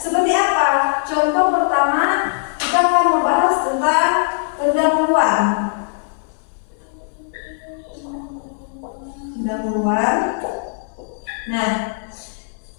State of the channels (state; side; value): silent; right; 66 dB below the other